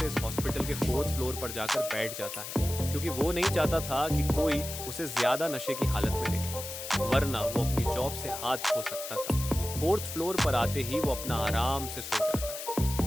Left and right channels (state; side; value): noise; left; hiss, 8 dB below the sound